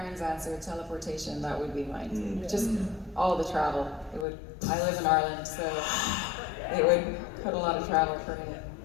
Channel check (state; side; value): drops out; right; at 4.2 s